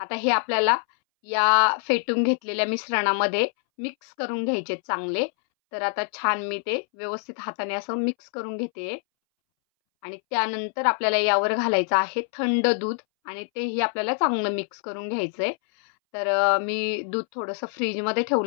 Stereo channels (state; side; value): silent; right; 62 dB below the other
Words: हे आपल्याला या फेटून घेतलेल्या मिश्रणामध्ये मिक्स करून घ्यायचे चांगले. तर आता छान मी ते व्यवस्थित हाताने असं मिक्स करून घेते आणि त्यानंतर आपल्याला यावर घालायचं आहे थंड दूध आणि तेही आपल्याला चांगलं मिक्स करून घ्यायचं आहे. तर मी दूध थोडंसं फ्रीजमध्ये